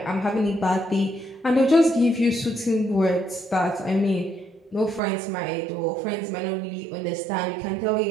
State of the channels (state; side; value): drops out; left; at 5.0 s